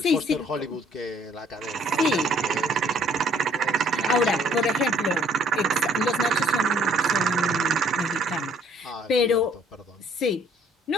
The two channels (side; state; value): both; normal; correlation 0.60